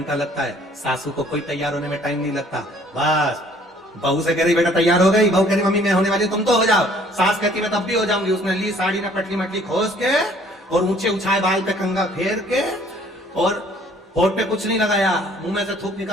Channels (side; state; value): both; normal; correlation 0.58